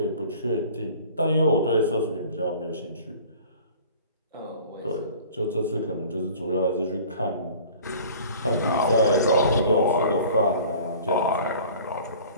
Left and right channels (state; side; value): inverted; both; correlation -0.46